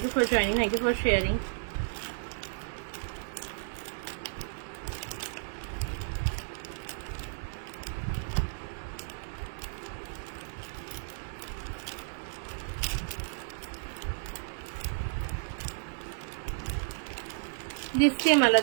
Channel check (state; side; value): silent; left; digital silence